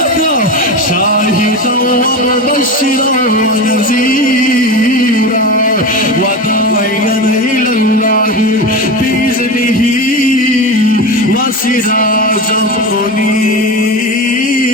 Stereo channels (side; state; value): both; normal; correlation 0.24